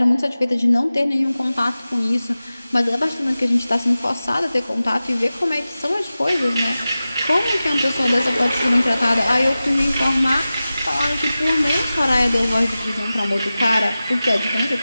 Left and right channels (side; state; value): both; inverted; correlation -0.95